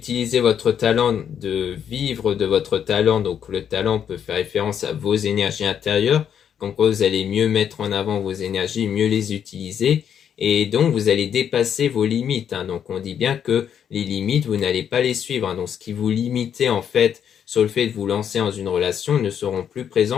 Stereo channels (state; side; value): quieter; right; 8.5 dB